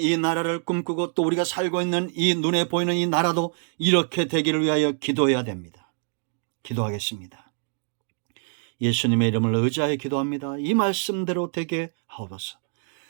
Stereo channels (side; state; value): left; silent; 62 dB below the other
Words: 나라를 꿈꾸고 또 우리가 살고 있는 이 눈에 보이는 이 나라도 이렇게 되기를 위하여 기도해야 됩니다. 기도하겠습니다. 예수님의 이름을 의지하여 기도합니다. 이 말씀대로 되게 하옵소서.